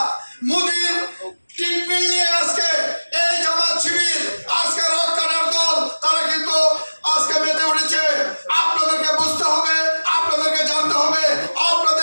মোদির ট্রিটমেন্ট নিয়ে আজকে এই জামাত শিবির, আজকে রক্ষার দল, তারা কিন্তু আজকে মেতে উঠেছে। আপনাদেরকে বুঝতে হবে, আপনাদেরকে জানতে হবে,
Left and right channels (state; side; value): inverted; both; correlation -1.00